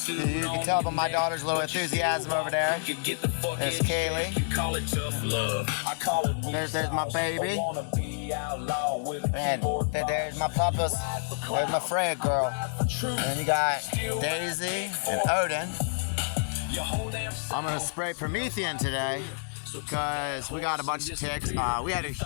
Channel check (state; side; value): silent; right; digital silence